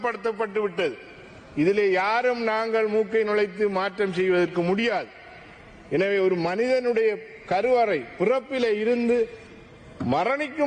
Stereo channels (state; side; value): identical; both; correlation 1.00